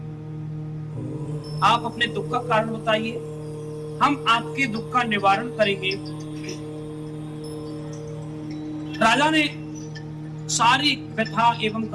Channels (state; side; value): identical; both; correlation 1.00